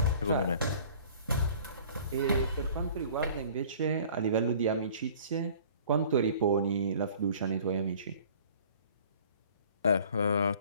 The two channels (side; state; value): both; inverted; correlation -0.49